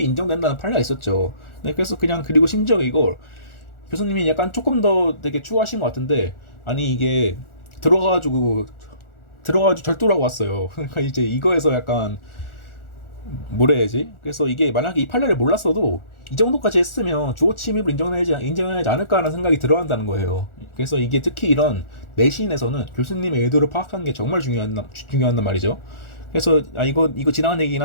인정된다는 판례가 있었죠. 네, 그래서 그냥 그리고 심지어 이걸 교수님이 약간 조금 더 되게 추구하신 것 같은데, 아니 이게 들어가가지고 절도라고 왔어요. 그러니까 이제 이거에서 약간 뭐라 해야지? 그래서 이게 만약에 이 판례를 몰랐어도 이 정도까지 했으면 주거 침입을 인정하지 않을까라는 생각이 들어간다는 거예요. 그래서 이게 특히 이런 내신에서는 교수님의 의도를 파악하는 게 정말 중요한 말이죠. 그래서 이거 지나간 얘기긴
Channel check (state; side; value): late; right; 1.4 ms